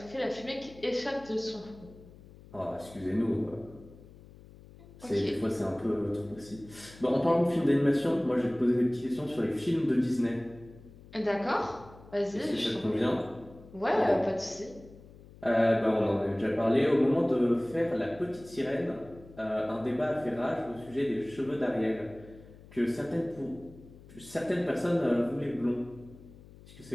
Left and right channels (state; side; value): noise; left; hum, 21 dB below the sound